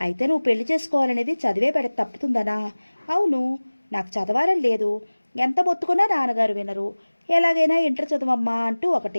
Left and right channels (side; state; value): both; inverted; correlation -1.00